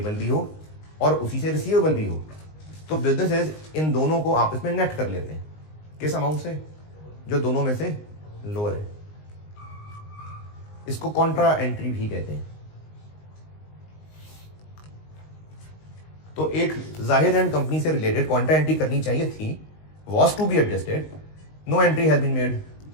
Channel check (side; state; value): right; late; 19 ms